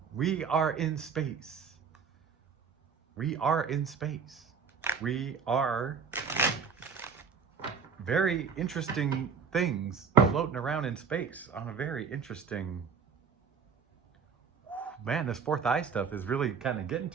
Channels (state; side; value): quieter; left; 5.9 dB